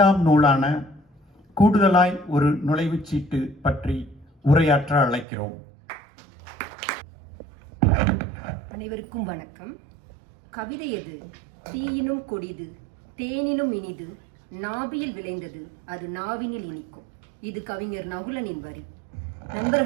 நூலான கூடுதலாய் ஒரு நுழைவுச்சீட்டு பற்றி உரையாற்ற அழைக்கிறோம். அனைவருக்கும் வணக்கம். கவிதை எது? தீயினும் கொடிது, தேனினும் இனிது, நாபியில் விளைந்தது, அது நாவினில் இனிக்கும். இது கவிஞர் நகுலனின் வரி.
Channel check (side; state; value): left; drops out; at 5.2 s